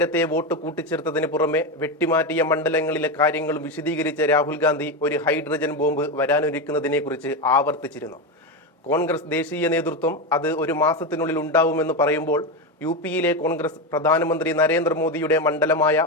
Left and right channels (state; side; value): normal; both; correlation 0.13